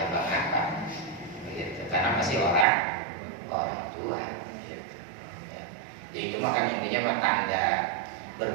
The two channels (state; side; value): drops out; left; at 2.7 s